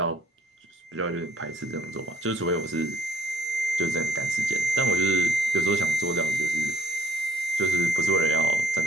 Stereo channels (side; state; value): both; normal; correlation 0.61